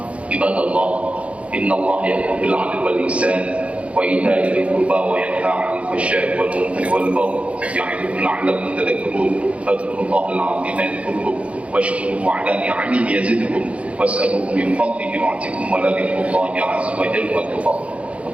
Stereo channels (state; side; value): late; left; 0.063 ms